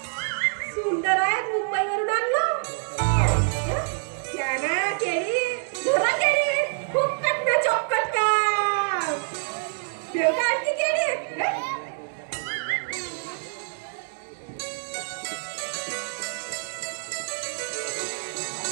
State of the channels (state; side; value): silent; left; digital silence